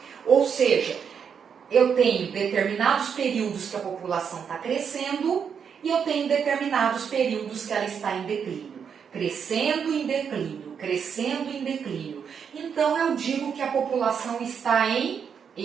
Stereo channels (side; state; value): left; quieter; 7.1 dB